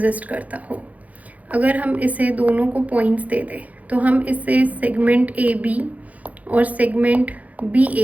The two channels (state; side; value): late; left; 0.073 ms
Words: करता हो. अगर हम इसे दोनों को पॉइंट्स दे दें तो हम इसे सेगमेंट ए बी और सेगमेंट बी